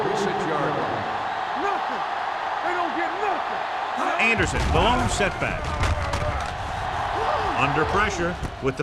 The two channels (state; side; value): identical; both; correlation 1.00